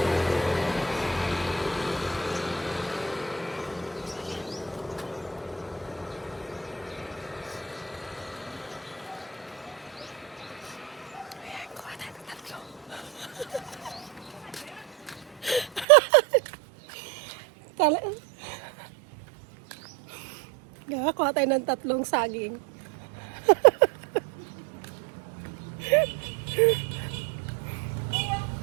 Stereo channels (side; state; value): left; drops out; at 15.9 s